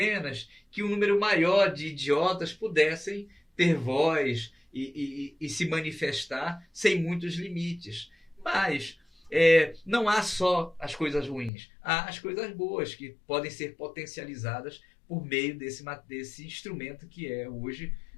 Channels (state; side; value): drops out; right; at 11.5 s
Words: que um número maior de idiotas pudessem ter voz e se manifestar sem muitos limites. Mas não há só as coisas ruins, há as coisas boas que podem ser potencializadas por meio desse instrumento que é hoje